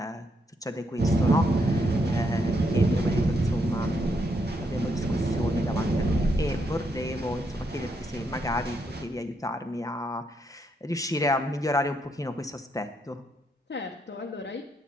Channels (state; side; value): normal; both; correlation 0.77